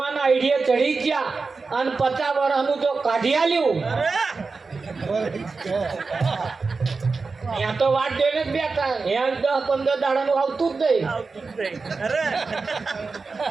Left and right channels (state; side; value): quieter; left; 4.3 dB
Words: આઈડિયા ચડી ગયા અને 50 વર્ષનું જો કાઢી આલ્યું, ત્યાં તો વાત જોઈને જ બેઠા. 10-15 દાડાનું આવતું જ નહીં,